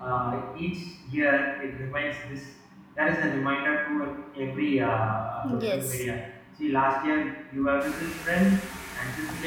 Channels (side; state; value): both; identical; correlation 1.00